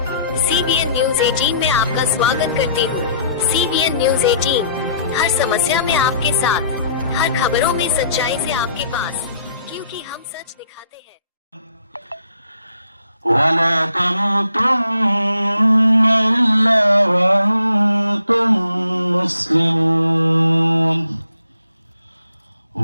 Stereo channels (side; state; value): both; inverted; correlation -0.65